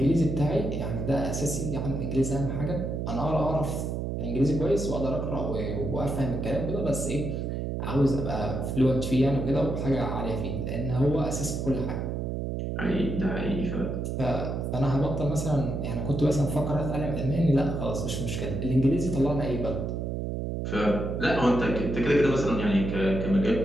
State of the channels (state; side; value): noise; right; hum, 2 dB below the sound